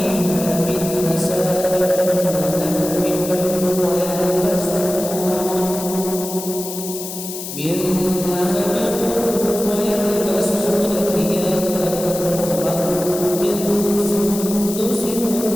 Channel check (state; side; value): noise; left; hiss, 8 dB below the sound